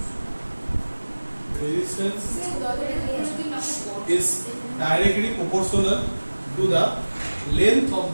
Resistance is directly proportional to the length of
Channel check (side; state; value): both; inverted; correlation -1.00